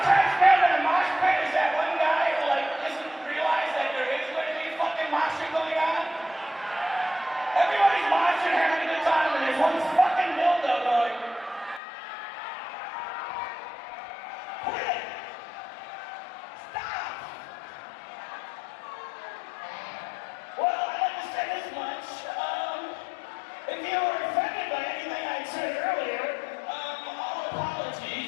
cracks me up in a mosh pit is that one guy who like doesn't realize that there is going to be fucking moshing going on. Everybody's moshing, having a good time, and there's one fucking dildo going. Quit it! Stop! Well, I'd like to say this much. If you were offended by anything I said earlier, all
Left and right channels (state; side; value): drops out; right; at 11.8 s